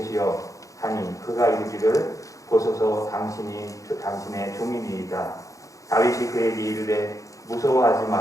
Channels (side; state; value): right; late; 0.16 ms